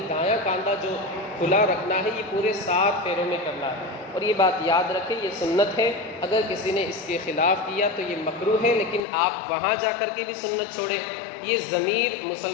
دایاں کاندھا جو کھلا رکھنا ہے، یہ پورے 7 پھیروں میں کرنا ہے۔ اور یہ بات یاد رکھیں، یہ سنت ہے، اگر کسی نے اس کے خلاف کیا تو یہ مکروہ ہے، لیکن آپ وہاں جا کر کے بھی سنت چھوڑیں، یہ ضمیر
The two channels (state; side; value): drops out; right; at 9.0 s